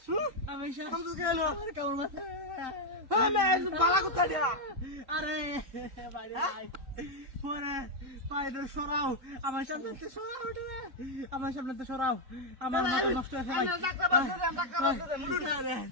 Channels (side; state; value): left; late; 3.6 ms